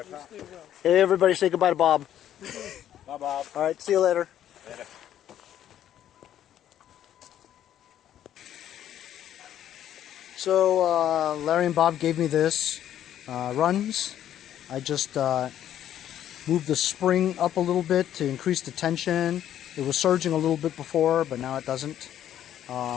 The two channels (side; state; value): right; quieter; 11.0 dB